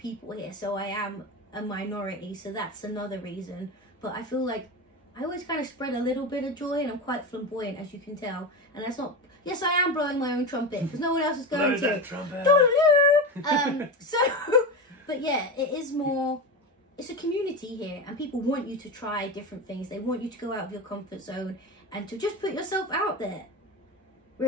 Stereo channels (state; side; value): normal; both; correlation 0.21